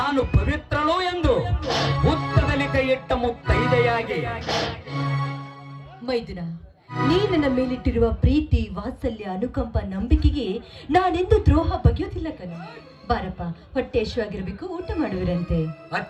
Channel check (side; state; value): both; identical; correlation 1.00